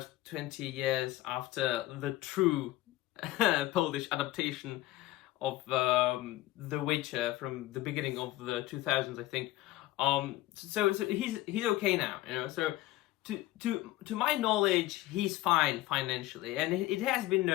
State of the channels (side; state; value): right; quieter; 16.5 dB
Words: 20 years after the true Polish adaptation of The Witcher from the beginning of the 2000s, I think. So he's okay now, you know. So to my knowledge, he's fine financially, and it has been